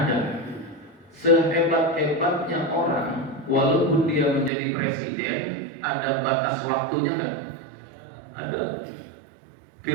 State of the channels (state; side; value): drops out; left; at 4.5 s